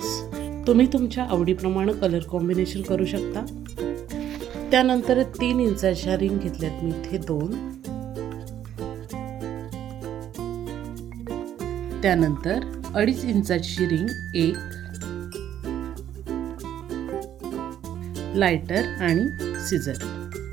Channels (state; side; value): quieter; left; 10.8 dB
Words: तुम्ही तुमच्या आवडीप्रमाणे कलर कॉम्बिनेशन करू शकता. त्यानंतर 3 इंचाच्या रिंग घेतल्यात मी इथे 2. त्यानंतर 2.5 इंचाची रिंग 1, लायटर आणि सिझर.